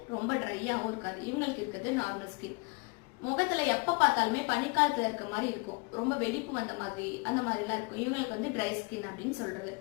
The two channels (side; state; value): right; quieter; 29.4 dB